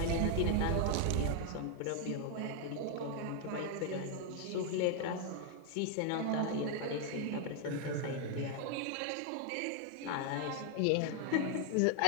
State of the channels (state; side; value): different; both; correlation 0.00